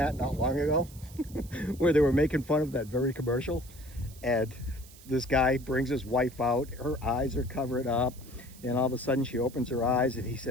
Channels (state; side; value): noise; right; hiss, 21 dB below the sound